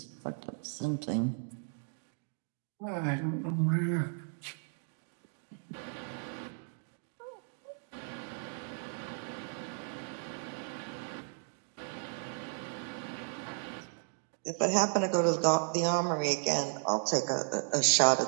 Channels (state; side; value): silent; left; 55 dB below the other